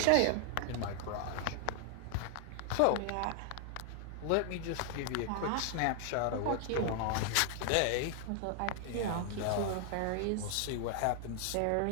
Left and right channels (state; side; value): different; both; correlation 0.00